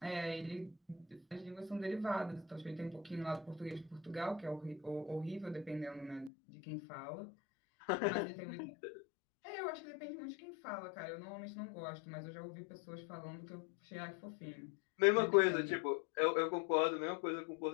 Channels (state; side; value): drops out; right; at 6.3 s